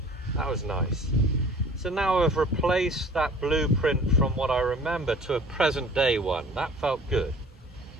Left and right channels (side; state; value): both; normal; correlation 0.48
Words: That was nice. So now I've replaced that blueprint from what I remember to a present day one. That felt good.